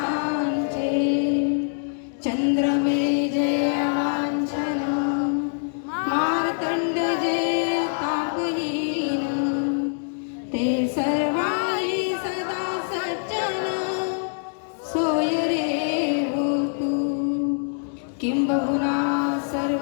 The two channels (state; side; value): silent; right; digital silence